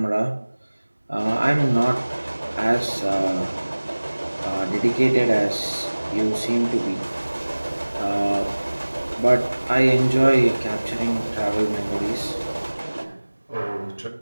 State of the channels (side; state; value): both; inverted; correlation -1.00